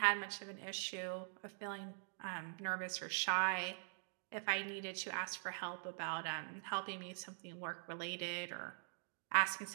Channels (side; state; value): left; silent; digital silence